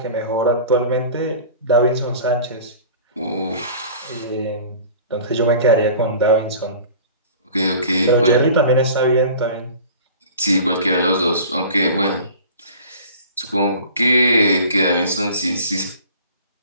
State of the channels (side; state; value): both; inverted; correlation -0.43